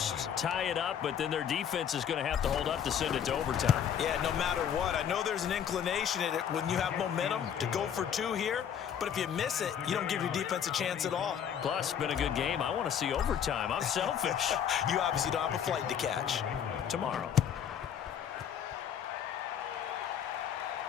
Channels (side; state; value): right; quieter; 8.6 dB